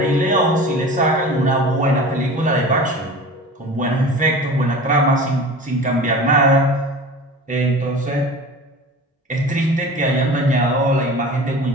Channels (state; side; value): normal; both; correlation 0.37